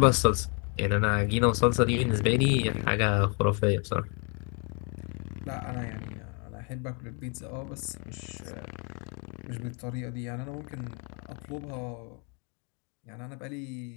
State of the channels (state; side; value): quieter; right; 36.1 dB